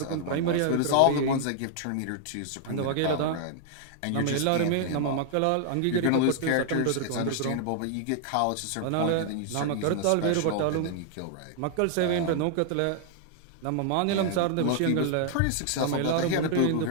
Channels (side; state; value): both; different; correlation -0.01